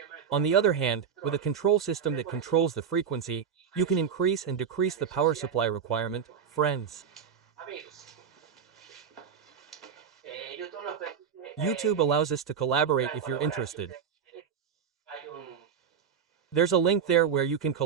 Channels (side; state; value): left; quieter; 7.3 dB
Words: On the other hand, with a control system that controls the frequency, you can increase and decrease the power supply requirement, friends. YouTube allows us to collaborate if you're interested. There's a link there where you can